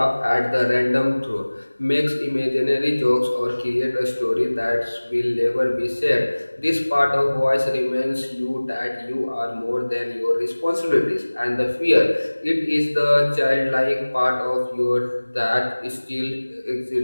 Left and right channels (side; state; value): both; inverted; correlation -1.00